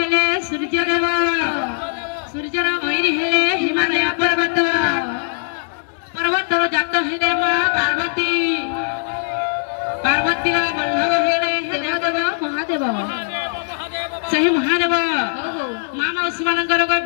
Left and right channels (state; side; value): silent; right; digital silence